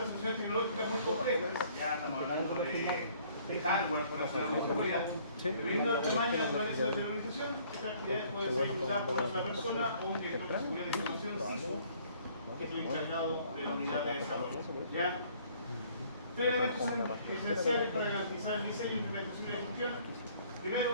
soluciones tecnológicas muy complejas, ya estamos hablando de hardware para hacer la seguridad. Dependiendo del tamaño y la naturaleza de la organización, esta actividad puede ser ejecutada por una persona o un director de seguridad de información CISO, que es el encargado de la unidad de desarrollo. ¿Ya? Tres elementos son esenciales para garantizar el diseño, implementación y ejecución.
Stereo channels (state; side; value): inverted; both; correlation -0.59